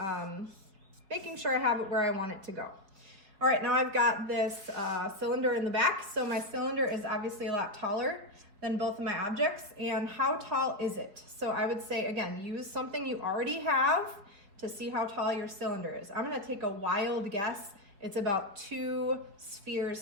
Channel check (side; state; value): left; late; 4.8 ms